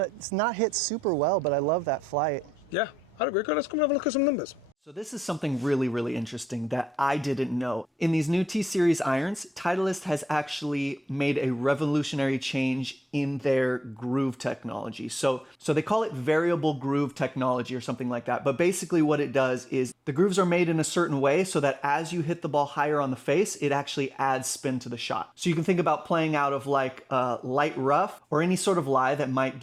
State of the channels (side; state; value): both; normal; correlation 0.86